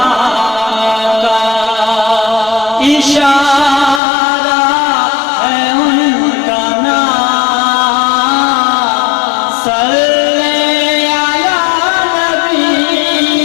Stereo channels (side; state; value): right; drops out; at 4.0 s